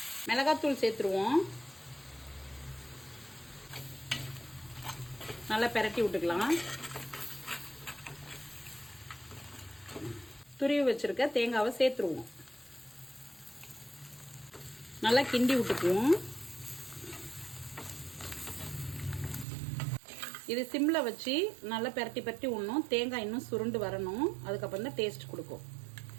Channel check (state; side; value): drops out; left; at 19.5 s